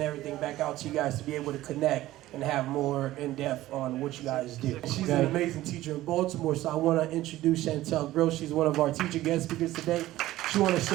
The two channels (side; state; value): left; quieter; 15.7 dB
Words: everything back out to you guys to be able to connect and have more in-depth on what you guys do. She's an amazing teacher in Baltimore, so I want to introduce Chantel Gross. She's one of our teacher guest speakers today. She wants to